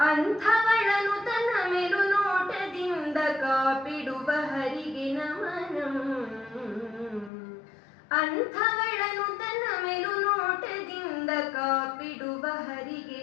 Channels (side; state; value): right; drops out; at 7.3 s